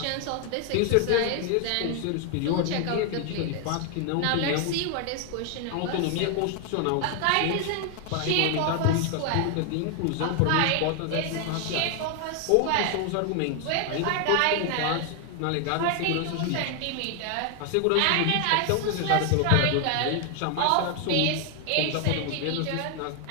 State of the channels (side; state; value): both; different; correlation 0.00